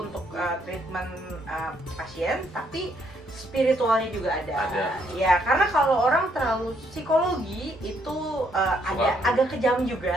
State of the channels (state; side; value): normal; both; correlation 0.71